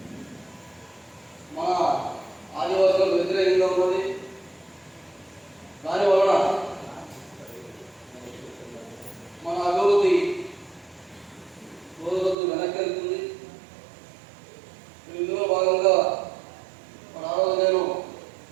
మన ఆదివాసులకు వ్యతిరేకంగా ఉన్నది. దానివలన మన అభివృద్ధి రోజు రోజు వెనక్కి వెళ్తుంది. ఇందులో భాగంగా మన ఆ రోజు నేను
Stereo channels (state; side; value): drops out; left; at 12.4 s